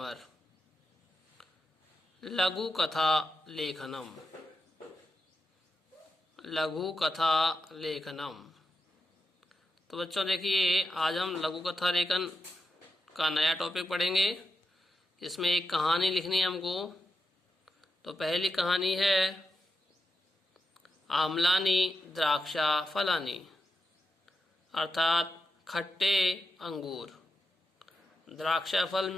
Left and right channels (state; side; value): normal; both; correlation 0.87